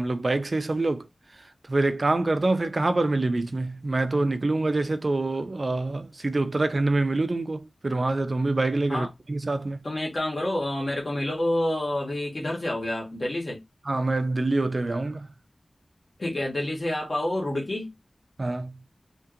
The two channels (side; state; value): both; normal; correlation 0.97